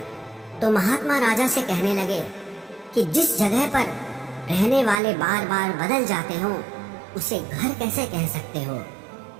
तो महात्मा राजा से कहने लगे कि जिस जगह पर रहने वाले बार बार बदल जाते हो उसे घर कैसे कह सकते हो?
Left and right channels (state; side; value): drops out; left; at 5.0 s